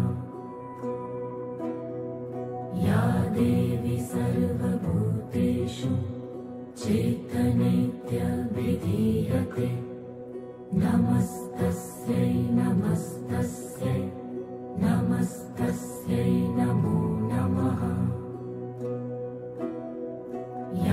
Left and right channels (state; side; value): identical; both; correlation 1.00